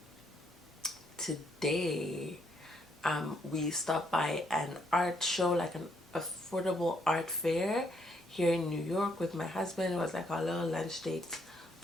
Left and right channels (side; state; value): both; normal; correlation 0.72